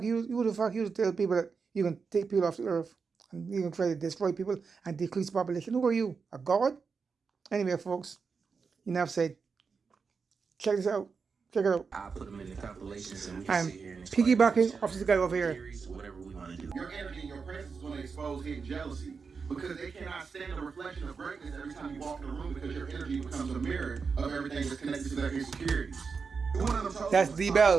you tell people that you can take people off the earth and you can try to destroy people and decrease population? Who are you? A god? Anyway, folks, enough said. Check this out. Check it out. I'll put them in the compilations and we I'm can sit here and piggybacking off this guy over here. theories, whatever we want to do. Your energy and your presence is going to expose hidden jealousy because they cannot stand the reflection of greatness every time you walk in the room because your energy becomes a mirror of everything that's connected to their insecurities. That's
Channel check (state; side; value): quieter; left; 5.2 dB